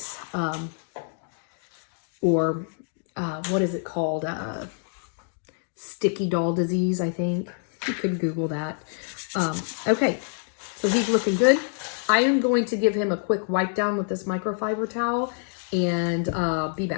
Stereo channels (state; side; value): silent; right; 61 dB below the other